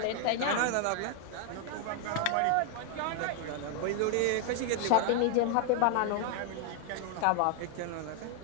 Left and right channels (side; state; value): both; different; correlation 0.00